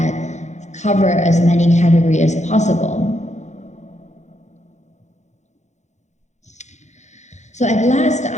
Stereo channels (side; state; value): right; late; 0.34 ms